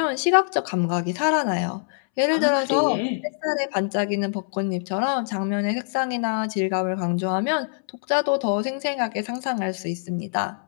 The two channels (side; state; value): right; silent; 62 dB below the other